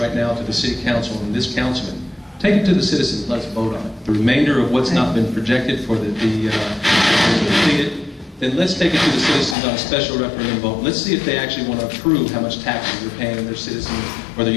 now to the city council and this councilman. Take it to the citizens, let's vote on it. The remainder of what's not been projected for the completed, then let's take it to the citizens on a special referendum vote. Let's see if they actually want to approve how much taxes they're paying their citizens or their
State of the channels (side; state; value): right; drops out; at 9.6 s